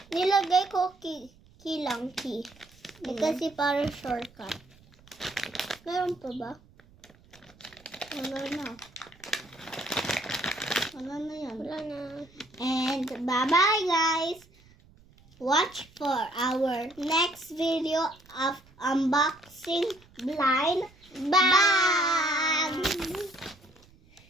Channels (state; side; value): noise; right; rumble, 27 dB below the sound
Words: Nilagay ko key lang. Kasi para shortcut. Meron pa ba? Wala na. Wala na yan. Wala na. And bye-bye guys. Watch for our next video of unboxing blind. Bye!